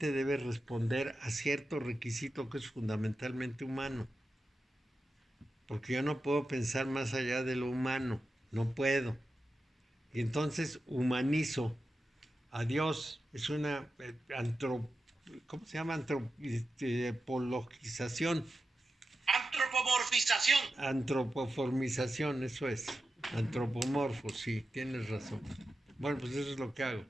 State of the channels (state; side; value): normal; both; correlation 0.91